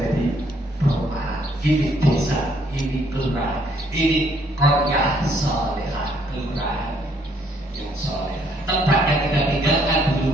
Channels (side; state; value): both; normal; correlation 0.67